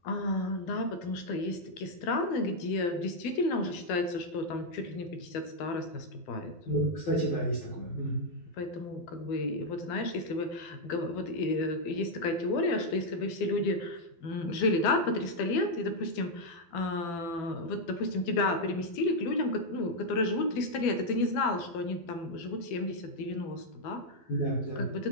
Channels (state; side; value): late; right; 12 ms